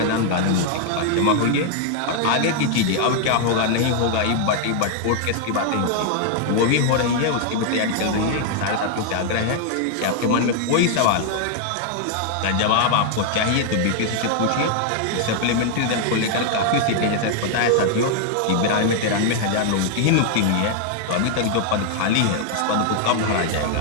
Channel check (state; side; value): different; both; correlation 0.00